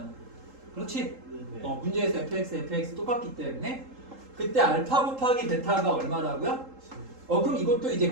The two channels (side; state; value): left; late; 3.8 ms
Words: 그렇지? 네. 문제에서 fx 똑같기 때문에 그때 알파 곱하기 베타가 얼마라고요? 그럼 이것도 이제